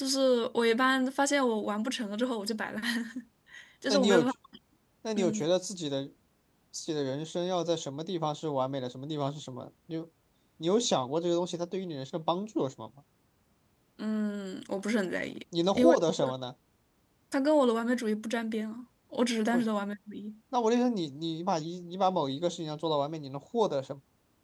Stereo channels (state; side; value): identical; both; correlation 1.00